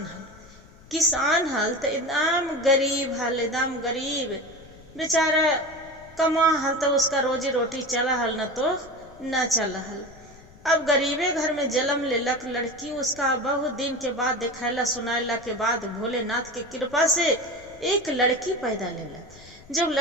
किसान हल तो एकदम गरीब हल, एकदम गरीब बेचारा कमा हल तो उसका रोजी रोटी चला हल, न तो न चला हल। अब गरीबे घर में जन्म लेलक लड़की, उसका बहुत दिन के बाद दिखाला सुनाला के बाद भोलेनाथ के कृपा से एक लड़की पैदा लेलक। जब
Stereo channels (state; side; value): noise; left; rumble, 23 dB below the sound